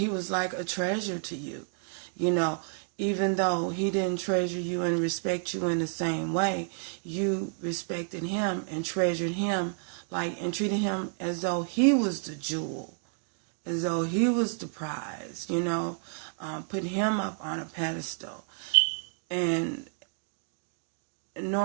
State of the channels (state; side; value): silent; left; 58 dB below the other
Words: like a treasure to you. Even though he didn't treasure you and respect you in the same way, you respected him and treasured him and treated him as though he was the jewel, as though he was the prize, put him up on a pedestal. And